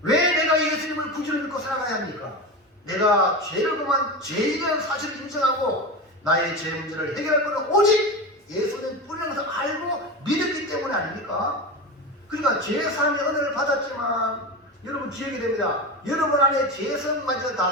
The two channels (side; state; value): both; normal; correlation 0.23